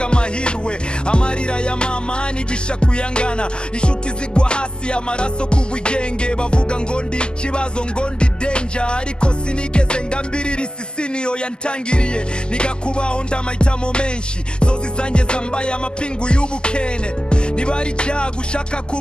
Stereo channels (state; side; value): late; right; 0.047 ms